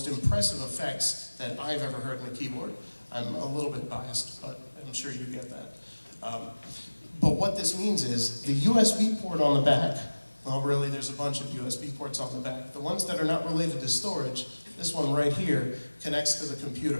impressive effects that I've ever heard in a keyboard. I'm a little bit biased, but I'm sure you get that. But what this means is the USB port on the back, well, really, there's a bunch of USB ports on the back. The ones that are not related to storage, this one right here, connects to the computer.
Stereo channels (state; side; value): inverted; both; correlation -1.00